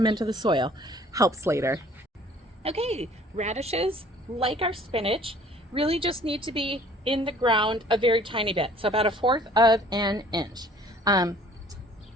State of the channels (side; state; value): both; normal; correlation 0.54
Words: into the soil. Helps later. Okay, radishes, like our spinach, really just need to be in the ground a very tiny bit, so about 1/4 of an inch. I